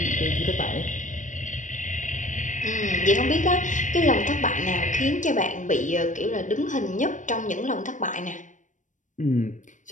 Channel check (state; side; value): late; right; 0.37 ms